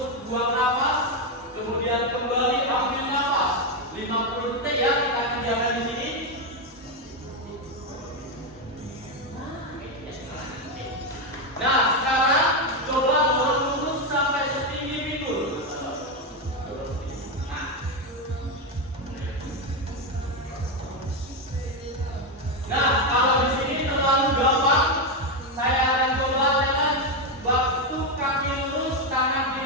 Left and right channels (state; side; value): normal; both; correlation 0.07